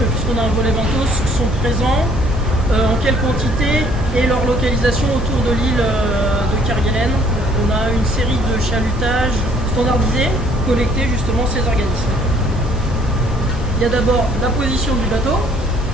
puisqu'on a un volet benthos, sont présents, en quelle quantité et leur localisation autour de l'île de Kerguelen. On a une série de chalutages standardisés, collectés justement ces organismes. Il y a d'abord la position du bateau,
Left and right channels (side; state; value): both; normal; correlation 0.60